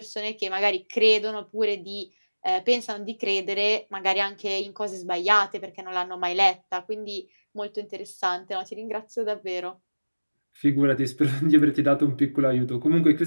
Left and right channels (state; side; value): inverted; both; correlation -1.00